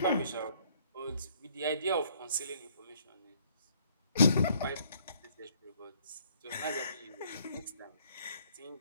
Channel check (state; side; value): inverted; both; correlation -0.63